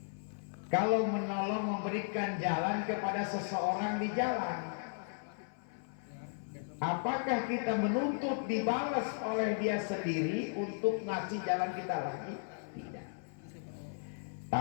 kalau menolong, memberikan jalan kepada seseorang di jalan, apakah kita menuntut dibalas oleh dia sendiri untuk ngasih jalan kita lagi? Tidak.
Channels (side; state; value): right; silent; 54 dB below the other